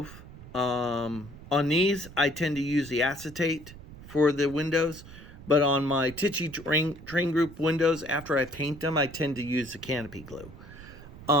On these, I tend to use the acetate for the windows, but on my Tichy train group windows, after I paint them, I tend to use the canopy glue.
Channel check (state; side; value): noise; right; rumble, 17 dB below the sound